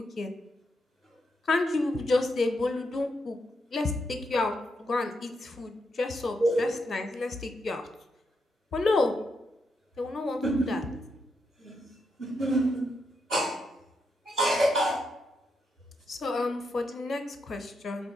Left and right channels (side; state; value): both; normal; correlation 0.82